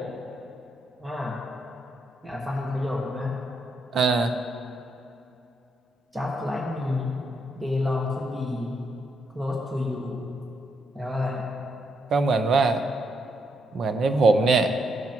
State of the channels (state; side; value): normal; both; correlation 0.78